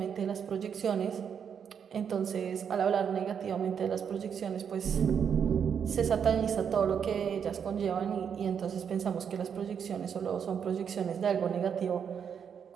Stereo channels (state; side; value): quieter; left; 7.5 dB